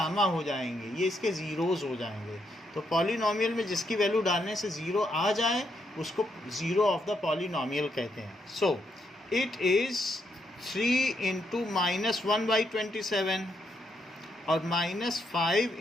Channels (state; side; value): normal; both; correlation 0.78